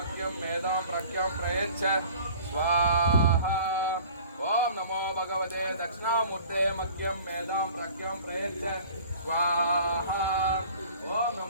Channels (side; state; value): both; inverted; correlation -0.47